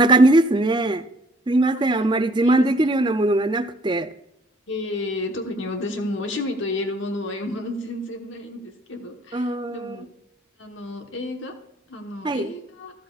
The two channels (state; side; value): normal; both; correlation 0.60